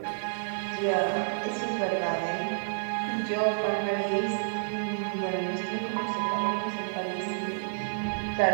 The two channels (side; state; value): left; silent; digital silence